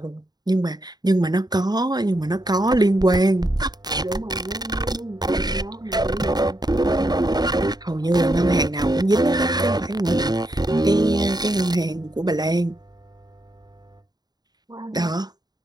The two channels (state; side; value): late; left; 0.20 ms